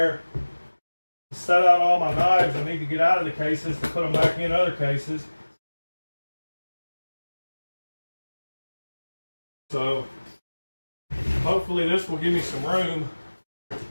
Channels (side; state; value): both; inverted; correlation -1.00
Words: to set out all my knives. I need to get out of the cases to put them back in other cases. So hopefully this will give me some room.